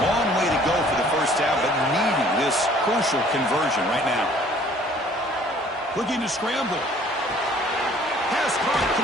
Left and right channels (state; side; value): normal; both; correlation 0.55